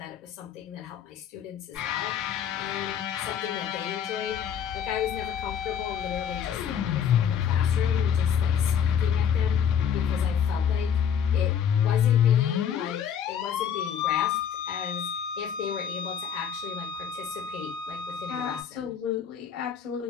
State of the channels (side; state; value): right; quieter; 8.2 dB